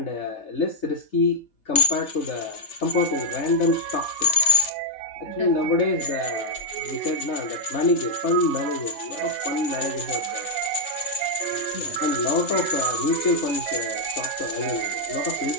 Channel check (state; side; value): late; right; 3.3 ms